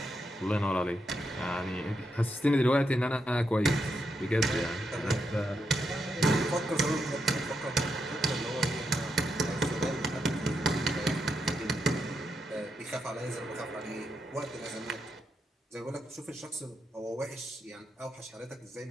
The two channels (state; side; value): normal; both; correlation 0.83